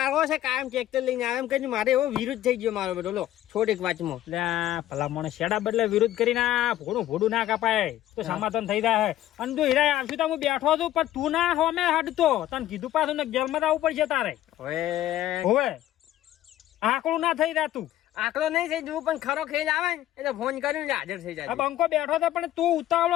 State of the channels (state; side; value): quieter; right; 13.5 dB